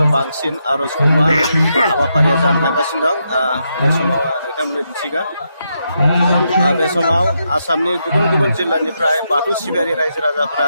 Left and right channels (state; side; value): inverted; both; correlation -0.82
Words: बांसिन आर'जखौमा हाबाफारिया जानो थांगासिनो दं। बे समाव नोंथांमोननो दिन्थिगोन। बे समाव आसामनि गुबुन गुबुन जिल्लानिफ्राय बाथौ सिबियारि रायजो राजाफोरा